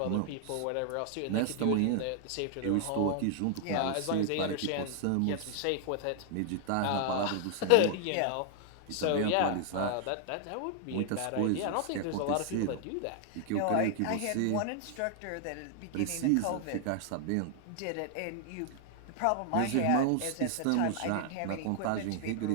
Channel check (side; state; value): both; different; correlation 0.00